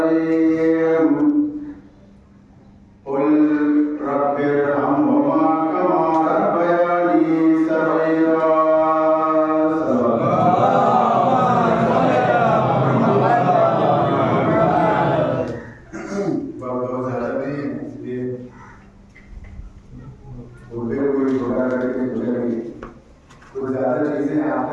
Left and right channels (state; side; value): identical; both; correlation 1.00